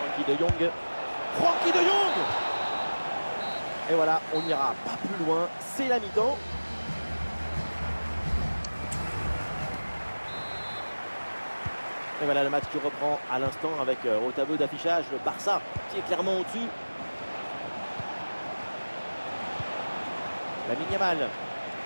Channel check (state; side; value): inverted; both; correlation -1.00